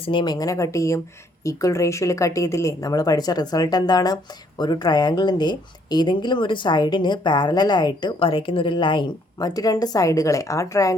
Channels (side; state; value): both; normal; correlation 0.67